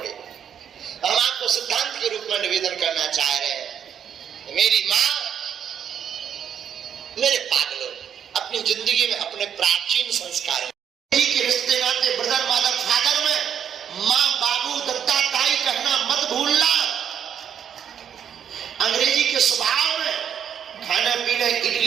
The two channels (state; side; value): quieter; left; 8.5 dB